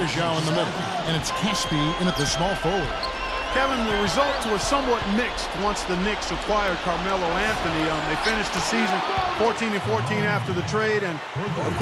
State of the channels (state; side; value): identical; both; correlation 1.00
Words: in the middle. And it's Caspi in at the small forward. Kevin, the results were somewhat mixed once the Knicks acquired Carmelo Anthony. They finished the season 14-14 after the trade and, of